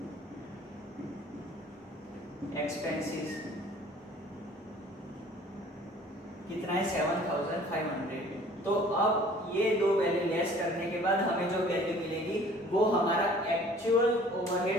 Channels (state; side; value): normal; both; correlation 0.51